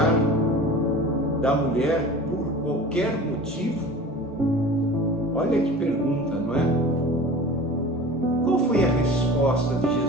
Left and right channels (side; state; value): both; normal; correlation 0.39